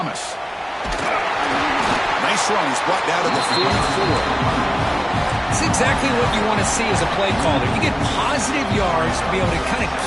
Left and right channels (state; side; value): identical; both; correlation 1.00